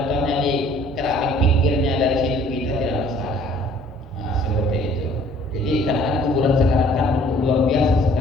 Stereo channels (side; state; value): both; normal; correlation 0.56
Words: di keramik pinggirnya dari situ kita tidak masalah. Nah, seperti itu. Jadi karena kuburan sekarang kan luar biasa